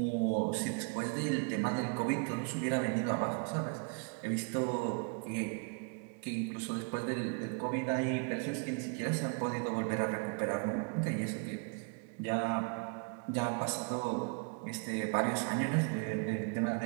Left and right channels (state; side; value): quieter; left; 38.5 dB